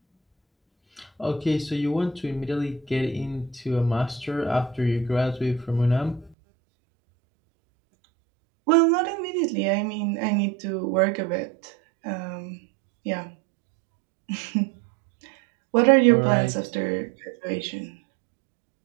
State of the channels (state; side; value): drops out; left; at 6.4 s